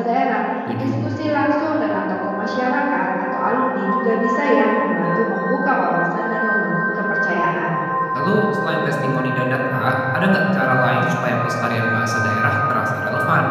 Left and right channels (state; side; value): identical; both; correlation 1.00